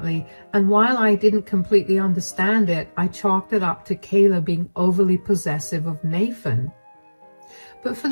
and while I didn't completely understand it, I chalked it up to Kayla being overly possessive of Nathan. But for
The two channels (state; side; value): inverted; both; correlation -1.00